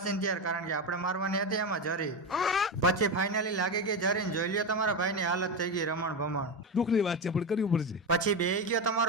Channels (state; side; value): normal; both; correlation 0.15